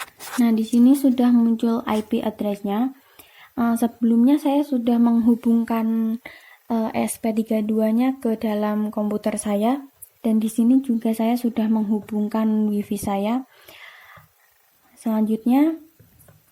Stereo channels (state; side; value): identical; both; correlation 1.00